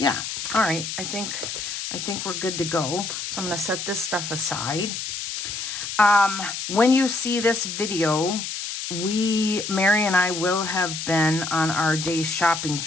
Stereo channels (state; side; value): noise; left; hiss, 5 dB below the sound